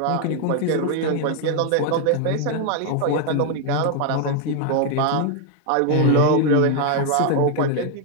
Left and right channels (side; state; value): both; different; correlation 0.00